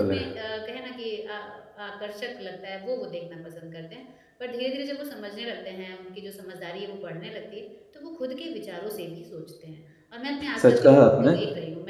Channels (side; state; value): both; identical; correlation 1.00